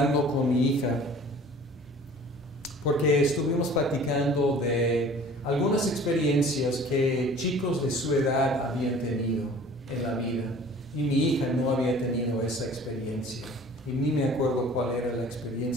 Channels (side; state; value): both; normal; correlation 0.47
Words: con mi hija, porque estuvimos platicando de algunas experiencias que chicos de su edad habían tenido en la vida, y mi hija no había tenido esa experiencia. Y ni me acuerdo cuál era la